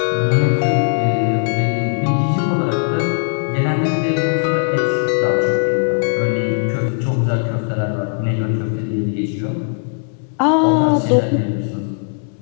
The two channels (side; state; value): right; silent; digital silence